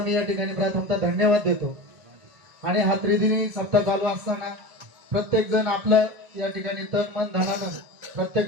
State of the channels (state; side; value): late; left; 1.5 ms